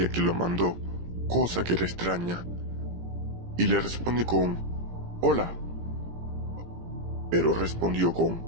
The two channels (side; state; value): left; late; 17 ms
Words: quién lo mandó, cosa que era extraña, y le respondí con "Hola", pero respondió